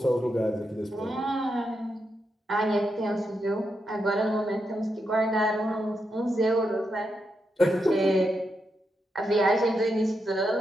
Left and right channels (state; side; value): normal; both; correlation 0.84